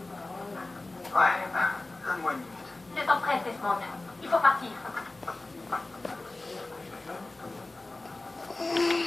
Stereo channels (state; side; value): quieter; right; 3.0 dB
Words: Ouais, donne-moi une minute. Le temps presse, Desmond. Il faut partir.